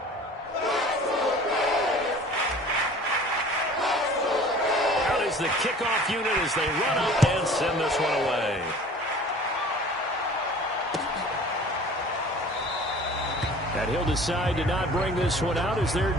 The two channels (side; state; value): both; normal; correlation 0.46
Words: The kickoff unit as they run up and send this one away. And he'll decide to not bring this one out as their